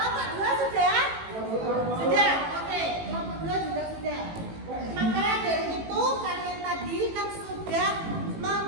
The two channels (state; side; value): late; left; 18 ms